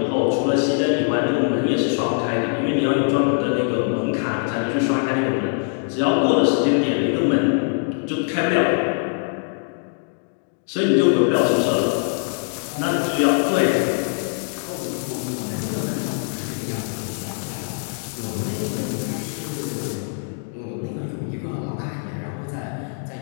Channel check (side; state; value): right; silent; 64 dB below the other